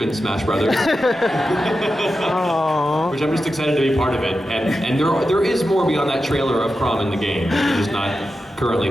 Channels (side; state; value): both; normal; correlation 0.90